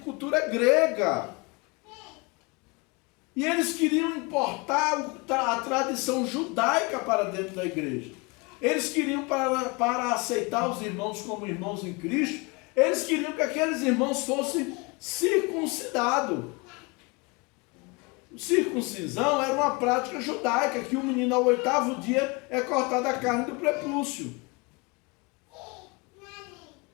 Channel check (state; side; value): quieter; right; 27.8 dB